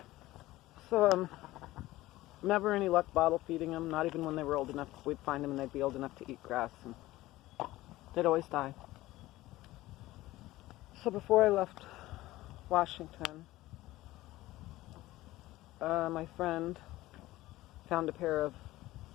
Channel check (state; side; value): quieter; right; 17.3 dB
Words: So never any luck bottle feeding them. Not even when they were old enough. We'd find them and they'd be old enough to eat grass, and they'd always die. So before I left Washington, my friend found a pair of